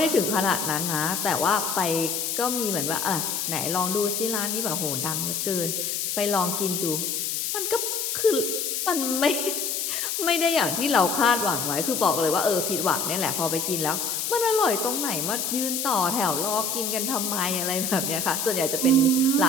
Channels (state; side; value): noise; left; hiss, 1 dB below the sound